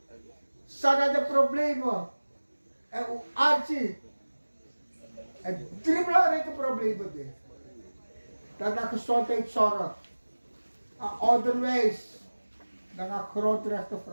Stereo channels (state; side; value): inverted; both; correlation -1.00